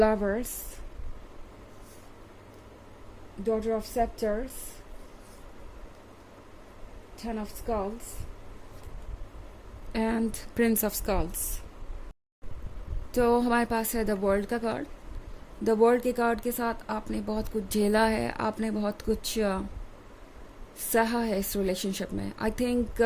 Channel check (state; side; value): identical; both; correlation 1.00